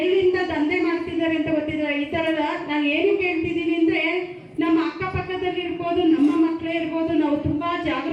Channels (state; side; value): identical; both; correlation 1.00